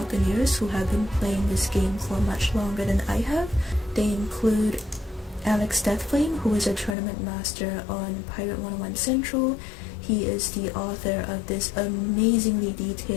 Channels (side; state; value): right; drops out; at 7.0 s